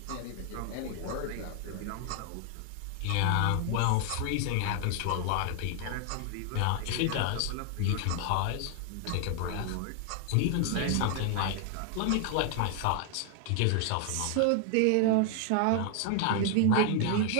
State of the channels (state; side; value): different; both; correlation 0.00